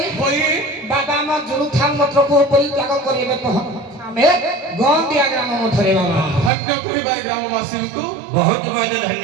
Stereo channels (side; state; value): left; drops out; at 6.5 s